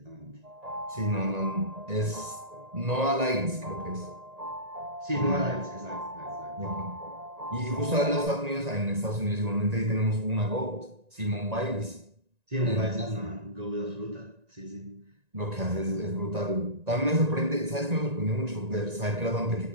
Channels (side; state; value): left; late; 1.9 ms